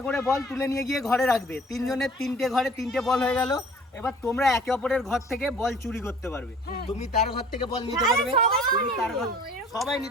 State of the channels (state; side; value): normal; both; correlation 0.49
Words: করে বল তুলে নিয়ে গিয়ে ঘরে রাখবে। 3 জনের 3টে ঘরে 3টে বল হয়ে গেল। এবার তোমরা একে অপরের ঘর থেকে বল চুরি করতে পারবে। তুমি তার ঘর থেকে বল নিতে পারবে, তুমি তার ঘর, সবাই